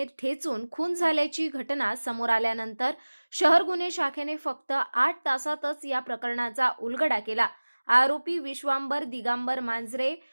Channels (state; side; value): inverted; both; correlation -1.00